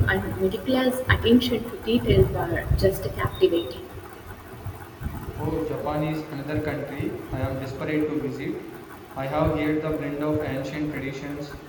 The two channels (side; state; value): both; identical; correlation 1.00